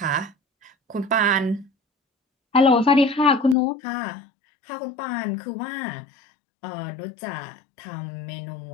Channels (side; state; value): right; drops out; at 3.6 s